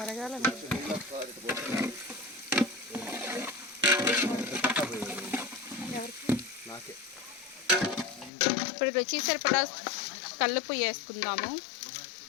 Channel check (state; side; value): drops out; right; at 8.3 s